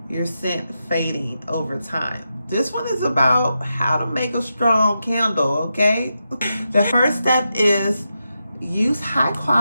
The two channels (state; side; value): inverted; both; correlation -0.87